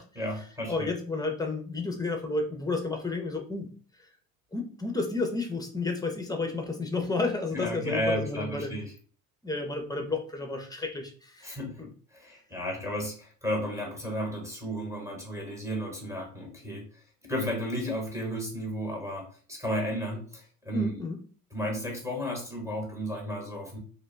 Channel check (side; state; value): both; normal; correlation 0.51